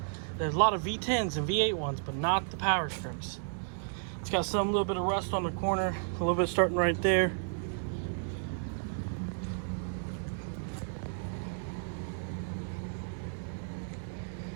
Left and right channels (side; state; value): left; silent; digital silence